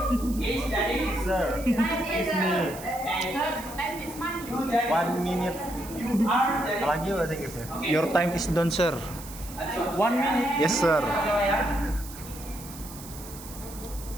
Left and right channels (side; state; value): right; noise; hiss, 15 dB below the sound